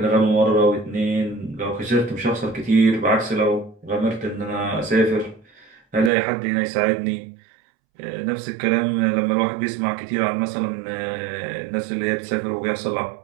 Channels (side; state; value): left; drops out; at 6.1 s